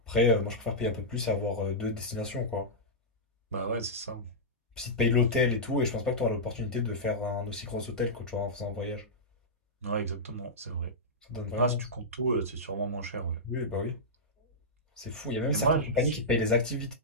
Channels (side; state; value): both; normal; correlation -0.11